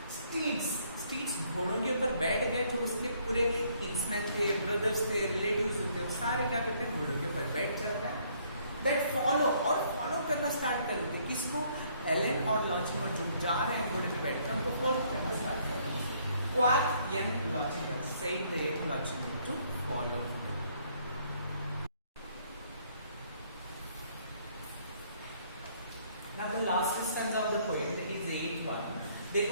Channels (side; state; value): both; inverted; correlation -0.66